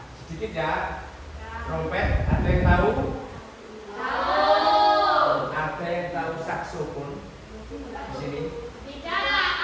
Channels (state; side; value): identical; both; correlation 1.00